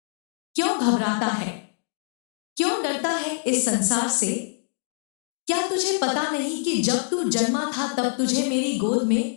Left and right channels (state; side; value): silent; right; 60 dB below the other